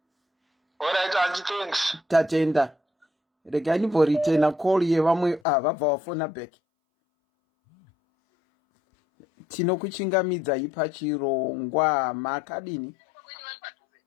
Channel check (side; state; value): right; drops out; at 5.4 s